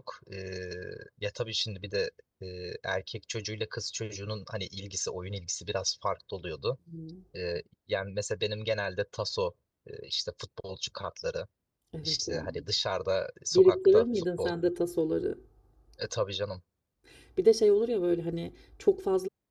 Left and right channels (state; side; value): identical; both; correlation 1.00